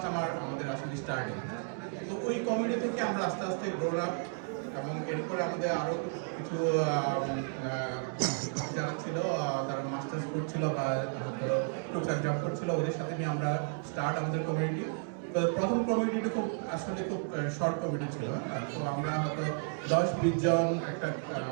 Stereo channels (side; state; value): left; silent; 56 dB below the other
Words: আমাদের আসলে স্টার্টিং। তো ওই কমিউনিটি থেকে আমরা আস্তে আস্তে গ্রোন আপ, এবং এরপরে আমাদের আরও কিছু যারা ছিল তারা মাস্টার্স করছিল বা টুকটাক জব করছিল, ওদের সাথে নিয়ে আমরা স্টার্ট আমাদের কমিউনিটি। তো প্রথম কমিউনিটিটা খুব আসলে খুব শর্ট কমিউনিটি ছিল। তো আমরা হয়তো 10-20 জন একটা